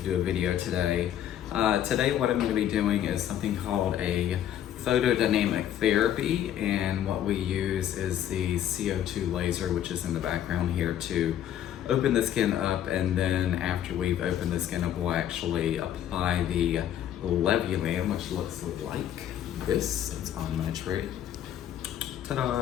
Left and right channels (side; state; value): right; quieter; 10.7 dB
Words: do a video today. Today, what I'm going to be doing is something called a photodynamic therapy, and what we use is the CO2 laser, which is in the background here, to open the skin up, and then after we've opened the skin up, we'll actually apply the Levulan, which looks like this. It's on my tray. Ta-da!